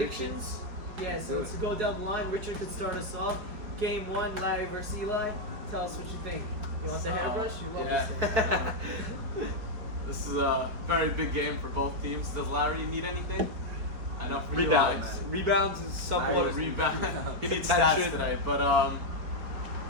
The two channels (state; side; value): late; left; 5.0 ms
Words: Yeah. So do let's it. go down the line. Richard could start us off. Game 1, Larry versus Eli. Tell us what you think. You want the hairbrush? You love yeah. this thing. This is a very big game for both teams. Does Larry need anything? I know for Rebounds. Eli, Rebounds is somewhat. Larry rebound. He needs Attention. stats today, but I'm